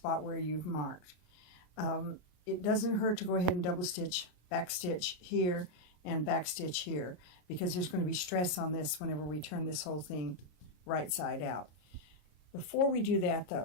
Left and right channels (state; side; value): late; right; 33 ms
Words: where you've marked. It doesn't hurt to go ahead and double stitch, back stitch here, and back stitch here, because there's going to be stress on this whenever we turn this whole thing right side out. Before we do that